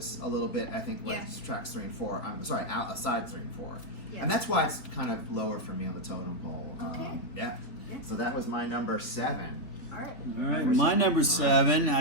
a little bit. I think when Yeah. it's tracks 3 and 4. I'm sorry, side 3 and 4, Yeah. and that's why it's kind of lower for me on the totem pole. Okay. Yeah. Yeah. So that was my number 7. All right. All right, my number 7.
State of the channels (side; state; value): right; late; 3.4 ms